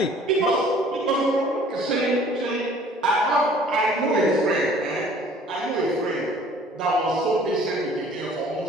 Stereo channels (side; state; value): both; normal; correlation 0.53